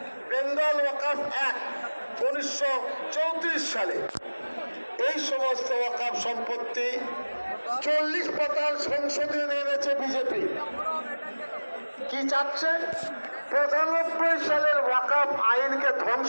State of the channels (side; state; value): both; inverted; correlation -1.00